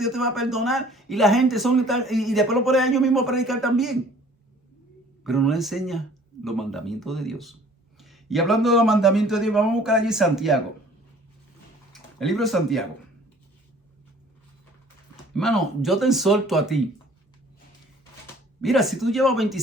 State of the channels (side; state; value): both; normal; correlation 0.53